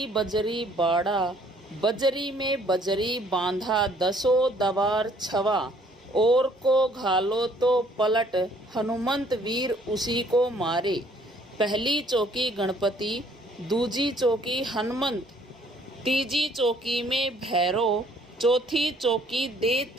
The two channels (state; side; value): normal; both; correlation 0.61